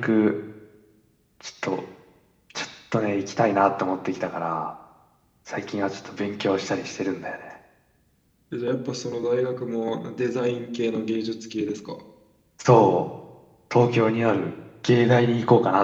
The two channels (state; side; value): identical; both; correlation 1.00